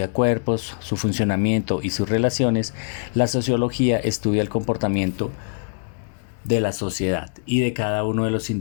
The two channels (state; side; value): silent; right; digital silence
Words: cuerpos, su funcionamiento y sus relaciones, la sociología estudia el comportamiento de la sociedad y de cada uno de los